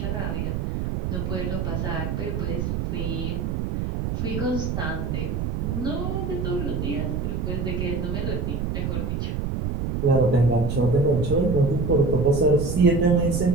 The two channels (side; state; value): right; noise; rumble, 1 dB below the sound